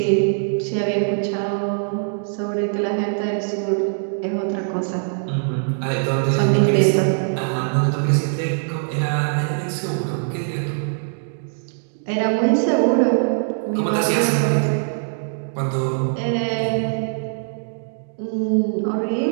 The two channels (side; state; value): left; silent; digital silence